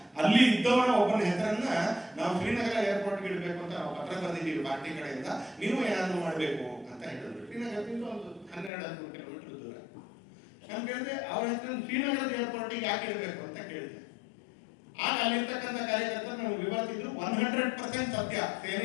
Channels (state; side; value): drops out; right; at 8.7 s